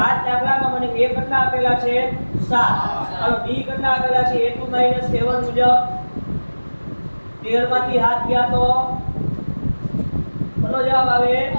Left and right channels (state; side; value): inverted; both; correlation -1.00